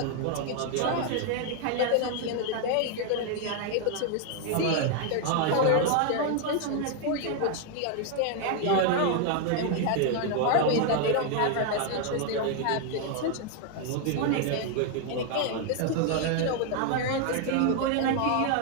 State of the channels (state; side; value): different; both; correlation 0.00